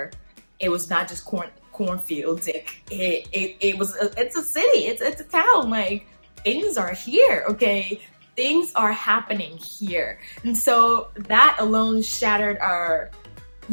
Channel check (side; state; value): both; inverted; correlation -1.00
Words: it was not just cornfields. It's a city. It's a town. Like, things are here, okay? Things are happening here. And so that alone shattered our,